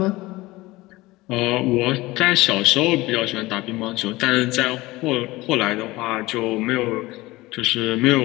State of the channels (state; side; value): quieter; right; 19.9 dB